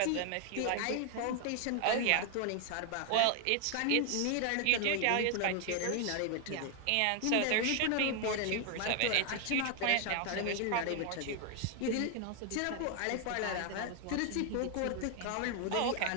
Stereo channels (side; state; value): both; different; correlation 0.00